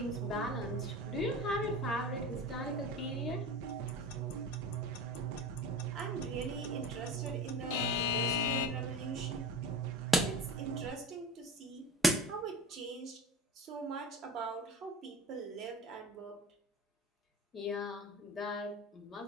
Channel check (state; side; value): normal; both; correlation 0.34